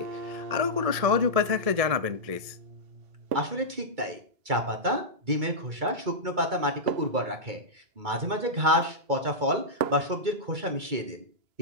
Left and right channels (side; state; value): left; late; 2.3 ms